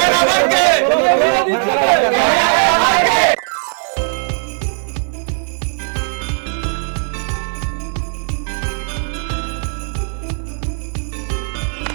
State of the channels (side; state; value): left; silent; digital silence